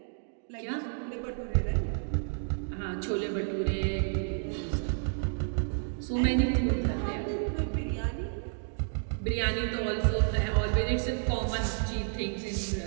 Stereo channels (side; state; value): left; silent; 57 dB below the other